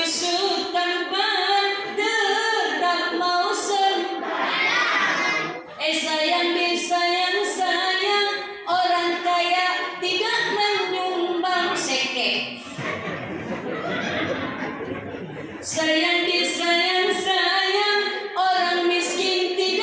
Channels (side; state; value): both; identical; correlation 1.00